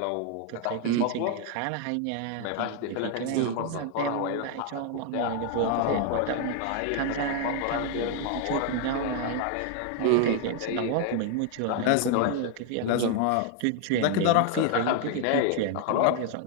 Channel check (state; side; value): different; both; correlation 0.00